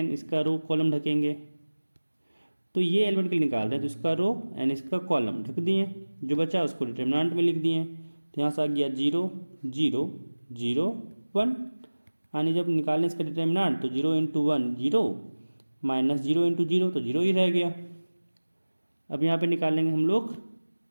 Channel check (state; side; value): inverted; both; correlation -1.00